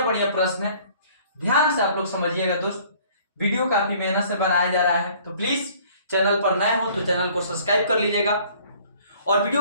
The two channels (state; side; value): inverted; both; correlation -0.55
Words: प्रश्न है, ध्यान से आप लोग समझिएगा दोस्त। वीडियो काफी मेहनत से बनाया जा रहा है, तो प्लीज चैनल पर नए हो तो चैनल को सब्सक्राइब कर लीजिएगा, और